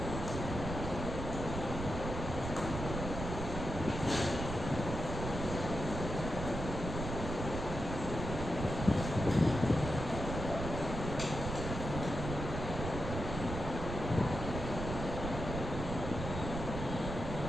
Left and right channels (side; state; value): right; noise; rumble, 5 dB below the sound